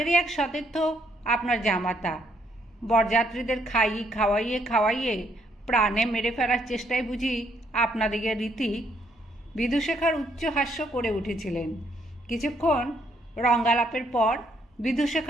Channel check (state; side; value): normal; both; correlation 0.71